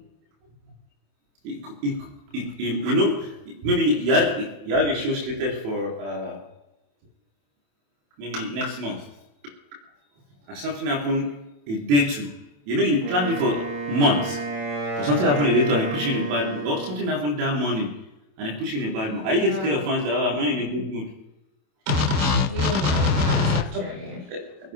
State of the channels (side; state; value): left; late; 28 ms